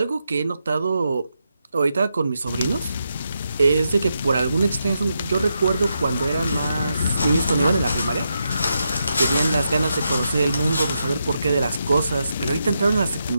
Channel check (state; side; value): inverted; both; correlation -0.84